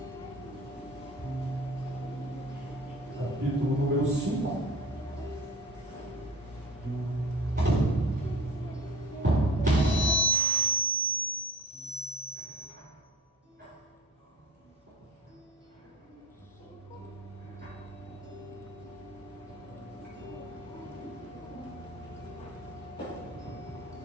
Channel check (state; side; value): normal; both; correlation 0.40